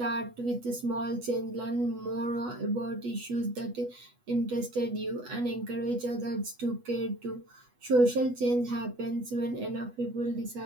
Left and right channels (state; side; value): late; left; 8.1 ms